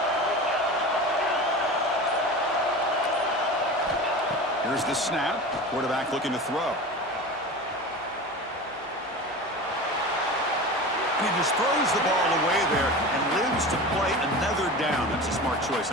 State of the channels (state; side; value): noise; right; hum, 28 dB below the sound